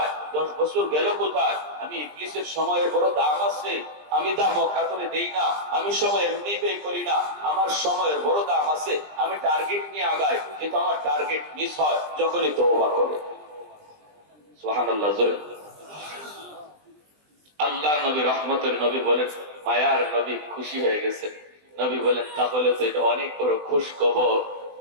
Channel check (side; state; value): left; late; 20 ms